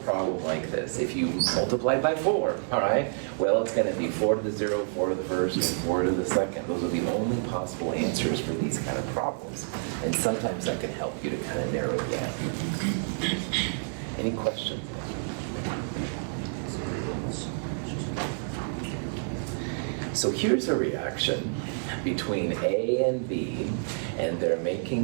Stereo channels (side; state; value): left; silent; 59 dB below the other